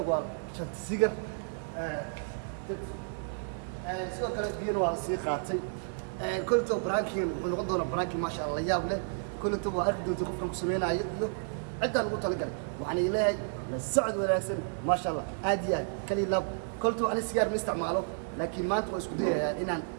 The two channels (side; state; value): left; silent; digital silence